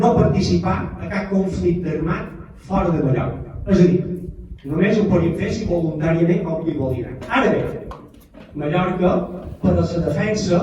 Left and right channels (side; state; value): both; identical; correlation 1.00